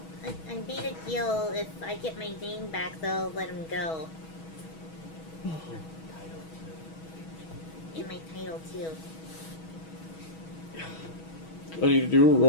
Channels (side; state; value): right; late; 6.2 ms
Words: I made a deal. If I get my name back, they'll let him go. And my title too. I need to do a